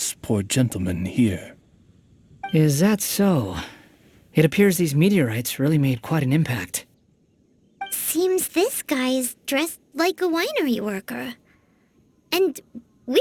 poor gentleman here. Is that so? It appears these meteorites really made quite an impact. Seems this guy is dressed like a winery worker. And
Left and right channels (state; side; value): identical; both; correlation 1.00